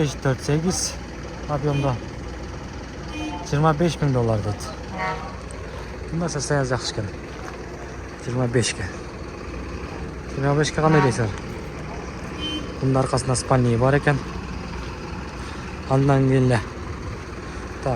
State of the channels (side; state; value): both; identical; correlation 1.00